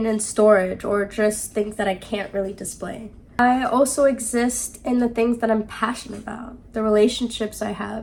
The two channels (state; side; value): identical; both; correlation 1.00